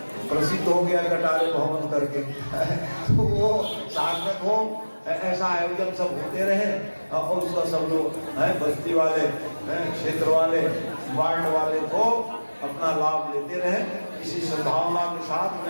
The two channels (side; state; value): both; inverted; correlation -1.00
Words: प्रसिद्ध हो गया कटारे भवन करके। तो वो सार्थक हो, ऐसा आयोजन सब होते रहे और उसका सब लोग बस्ती वाले, क्षेत्र वाले, वार्ड वाले को अपना लाभ लेते रहे। इसी सद्भावना के साथ